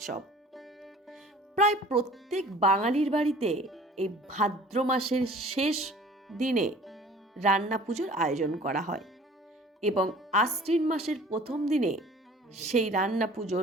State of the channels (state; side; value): normal; both; correlation 0.48